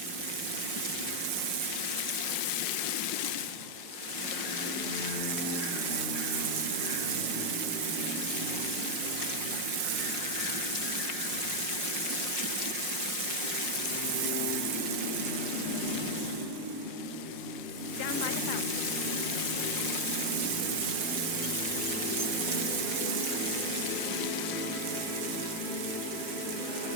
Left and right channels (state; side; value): late; left; 5.6 ms